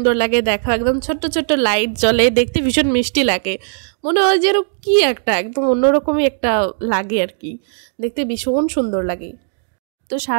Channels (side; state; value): left; silent; digital silence